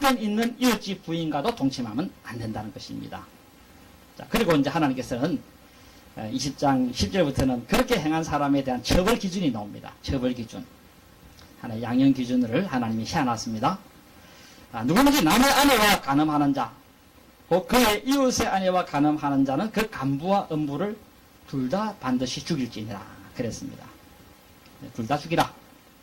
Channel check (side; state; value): both; identical; correlation 1.00